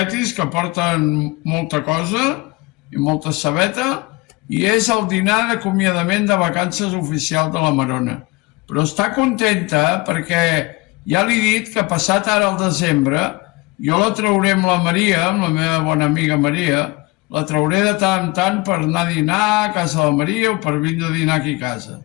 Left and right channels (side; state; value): right; quieter; 24.2 dB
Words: que porten molta cosa i molta cebeta i és el dinar d'acomiadament de vacances oficial de la Marona. Però està contenta perquè ja li he dit que passat ara el desembre jo la trauré amb la Maria, amb la meva bona amiga Maria, la trauré de tant en tant per anar a dinar a casa de la Maria o per vindre a dinar aquí a casa.